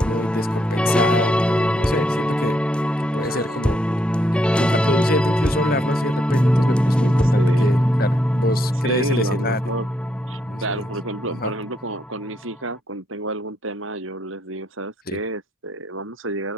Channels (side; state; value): both; normal; correlation 0.76